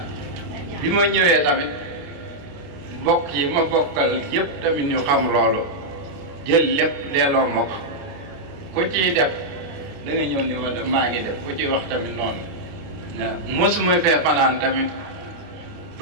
bi ma ñëwee tamit mbokk yi ma bokkal yëpp tamit ñu xam loolu jël lépp delloo ma ko ku ciy def da nga ñëw ni ma maa ngi def ku ciy wax tamit noonu mosuma fee fanaan tamit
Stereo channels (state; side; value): late; left; 28 ms